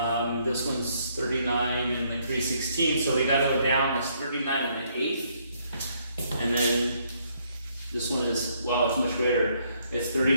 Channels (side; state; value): both; inverted; correlation -0.70